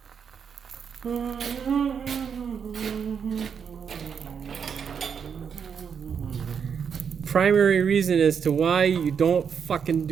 Primary reason as to why you don't fucking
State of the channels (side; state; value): left; quieter; 6.9 dB